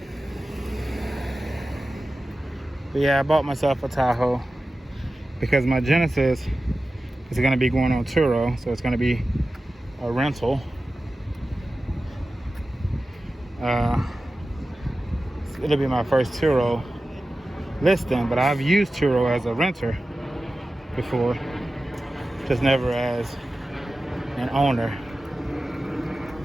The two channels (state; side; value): normal; both; correlation 0.94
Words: But yeah, I bought myself a Tahoe because my Genesis is going to be going on Turo, so it's going to be a rental. It'll be my first Turo listing, but I've used Turo as a renter before, just never as an owner.